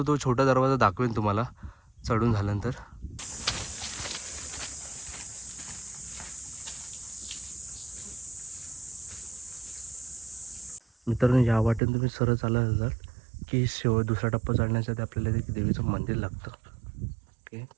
छोटा दरवाजा दाखवेन तुम्हाला चढून झाल्यानंतर. मित्रांनो, या वाटेने तुम्ही सरळ चालत जाल की दुसरा टप्पा चढण्यासाठी आपल्याला एक देवीचं मंदिर लागतं. ओके,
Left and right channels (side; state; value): left; drops out; at 11.8 s